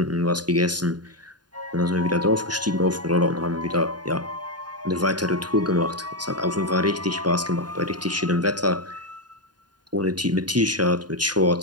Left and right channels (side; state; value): left; late; 0.70 ms